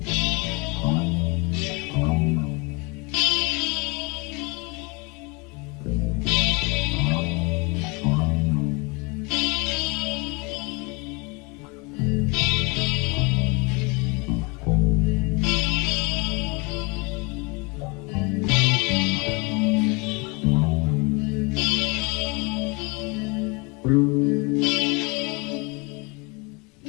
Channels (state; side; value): quieter; right; 29.0 dB